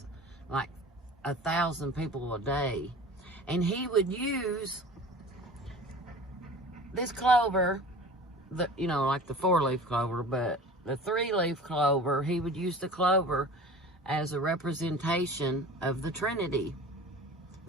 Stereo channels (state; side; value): normal; both; correlation 0.40